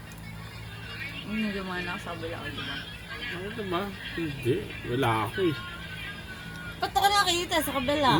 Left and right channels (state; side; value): identical; both; correlation 1.00